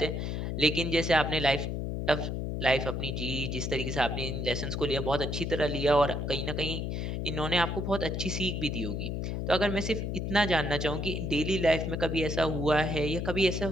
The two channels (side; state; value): left; noise; hum, 2 dB below the sound